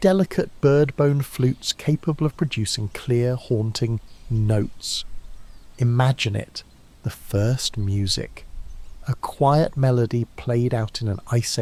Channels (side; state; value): both; identical; correlation 1.00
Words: bird-bone flutes capable of producing clear, haunting notes. Imagine it, the first music, a quiet melody played out in an Ice